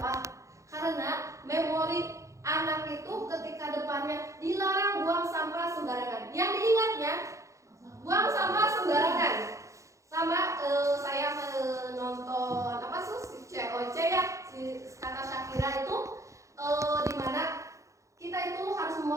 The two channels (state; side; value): late; left; 0.15 ms